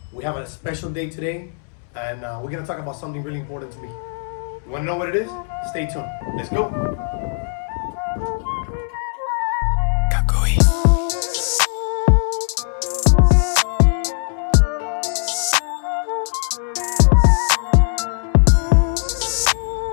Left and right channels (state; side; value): silent; right; 66 dB below the other